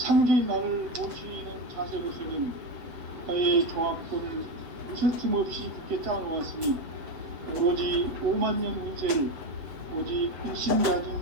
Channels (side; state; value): left; late; 7.9 ms